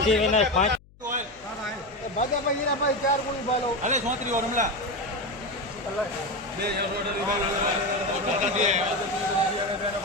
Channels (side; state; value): left; noise; hum, 27 dB below the sound